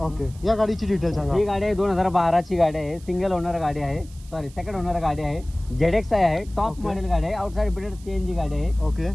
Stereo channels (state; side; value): noise; right; hiss, 24 dB below the sound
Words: ओके. या गाडीची डिटेल सांगा. ही गाडी आहे 2012 ची गाडी आहे, सिंगल ओनर गाडी आहे, सॉरी सेकंड ओनर गाडी आहे, ZX आहे, टॉप मॉडेल गाडी आहे, आउटसाइड फिटेड सीएनजी गाडी आहे. ओके.